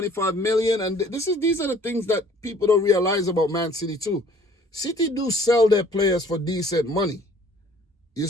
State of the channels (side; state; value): both; normal; correlation 0.55